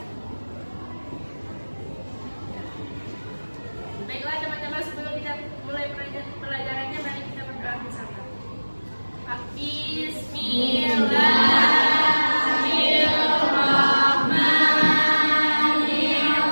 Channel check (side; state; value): both; inverted; correlation -1.00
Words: Baiklah teman-teman, sebelum kita mulai pelajarannya, mari kita berdoa bersama.